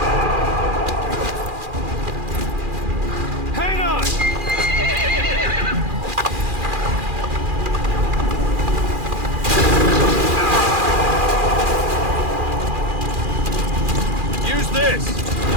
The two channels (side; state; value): left; late; 2.4 ms